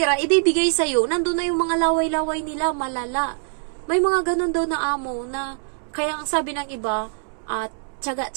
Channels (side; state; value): left; silent; 63 dB below the other